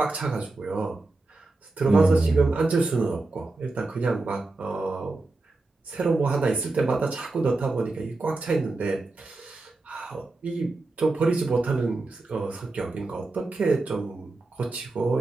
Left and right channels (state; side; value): quieter; left; 3.3 dB